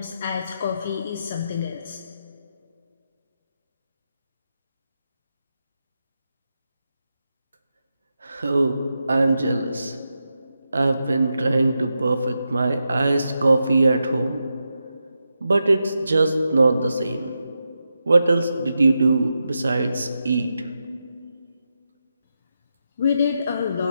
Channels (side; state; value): both; inverted; correlation -0.87